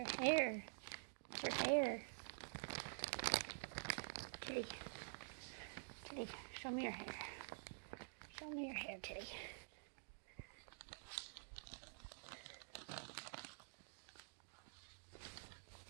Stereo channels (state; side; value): silent; left; digital silence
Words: hair. It's your hair. Tilley. Tilley, show me your hair. Show me your hair, Tilley.